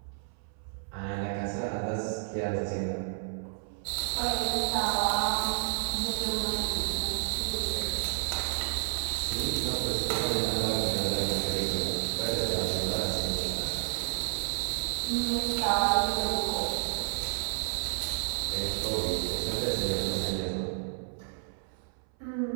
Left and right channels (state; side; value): silent; left; 57 dB below the other